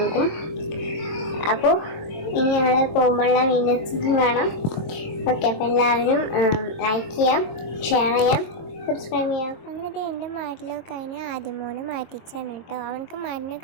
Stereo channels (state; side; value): late; right; 23 ms